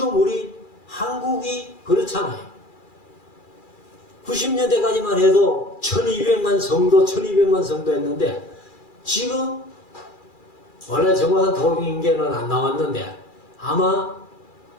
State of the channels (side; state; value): right; late; 2.4 ms